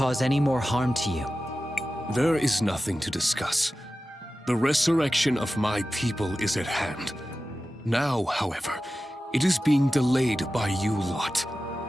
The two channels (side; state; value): both; normal; correlation 0.94